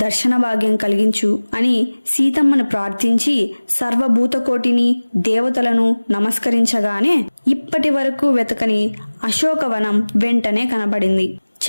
దర్శన భాగ్యం కలిగించు అని సీతమ్మను ప్రార్థించి సర్వభూతకోటిని దేవతలను నమస్కరించగానే ఇప్పటి వరకు వెతకని అశోకవనం వెంటనే కనబడింది.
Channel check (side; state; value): both; inverted; correlation -1.00